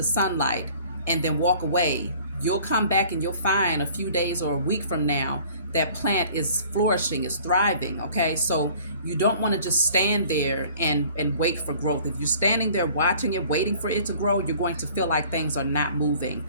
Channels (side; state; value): both; inverted; correlation -0.51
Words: sunlight, and then walk away, you'll come back and you'll find a few days or a week from now that plant is flourishing, is thriving, okay? So you don't want to just stand there and wait for growth. If you're standing there watching it, waiting for it to grow, you're going to feel like things are not moving.